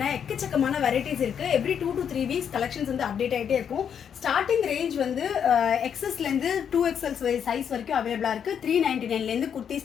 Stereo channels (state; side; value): quieter; right; 8.0 dB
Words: எக்கச்சக்கமான வெரைட்டிஸ் இருக்குது. எவ்ரி 2 to 3 வீக்ஸ் கலெக்ஷன்ஸ் வந்து அப்டேட் ஆகிட்டே இருக்கும். ஸ்டார்டிங் ரேஞ்ச் வந்து XSலேருந்து 2XL சைஸ் வரைக்கும் அவைலபிளாக இருக்குது. 399லேருந்து குர்த்தி